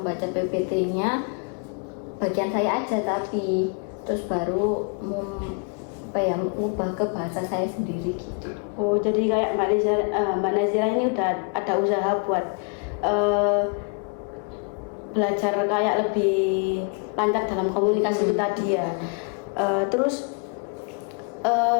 PPT-nya bagian saya aja, tapi terus baru mengubah ke bahasa saya sendiri gitu. Oh, jadi kayak Mbak Nazira ini udah ada usaha buat belajar kayak lebih lancar dalam komunikasi itu tadi ya. Terus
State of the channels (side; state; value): right; quieter; 35.6 dB